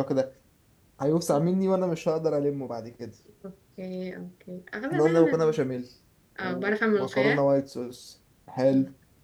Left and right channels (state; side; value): identical; both; correlation 1.00